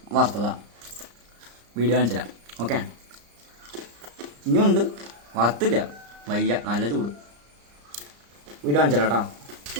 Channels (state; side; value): late; left; 34 ms